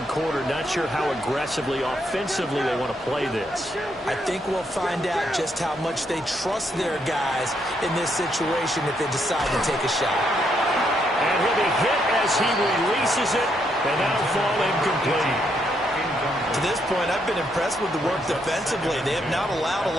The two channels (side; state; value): both; normal; correlation 0.76